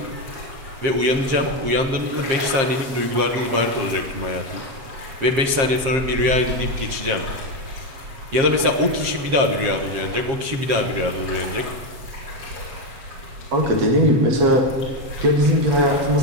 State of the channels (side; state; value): left; late; 7.5 ms